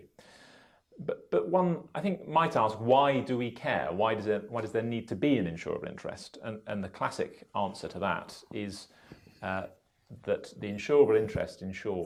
But one, I think, might ask, why do we care? Why does there need to be an insurable interest? And the classic answer to that is that the insurable interest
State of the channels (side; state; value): both; identical; correlation 1.00